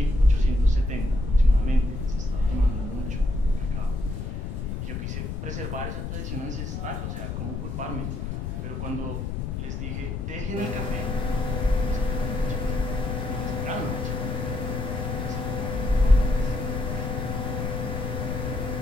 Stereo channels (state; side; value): noise; left; rumble, 4 dB below the sound